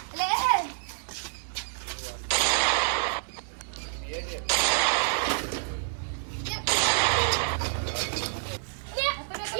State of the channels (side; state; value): left; silent; digital silence